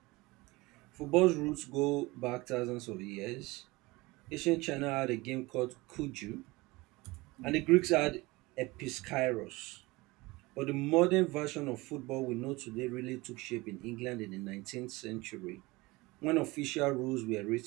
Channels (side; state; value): left; quieter; 22.2 dB